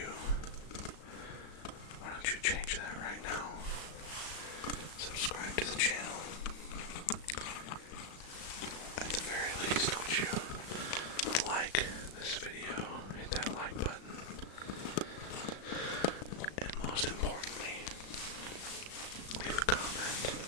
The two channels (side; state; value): right; late; 36 ms